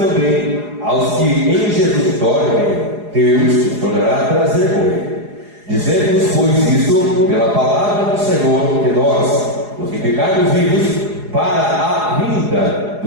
aos que em Jesus dormem, Deus os tornará a trazer com ele. Dizemos, pois, isto pela palavra do Senhor, que nós, os que ficarmos vivos, para a vinda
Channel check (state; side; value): late; left; 4.8 ms